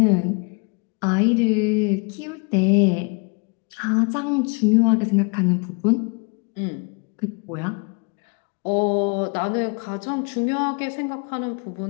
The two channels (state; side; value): quieter; right; 33.9 dB